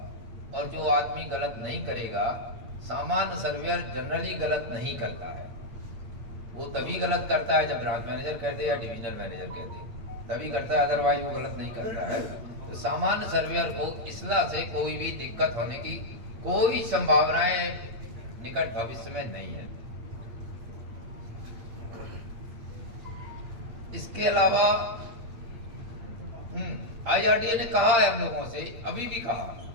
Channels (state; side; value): late; left; 8.7 ms